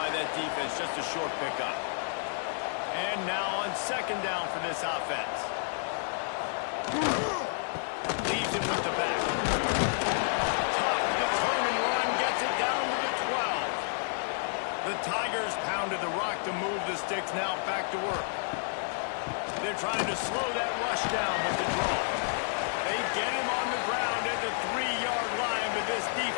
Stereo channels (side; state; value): right; silent; digital silence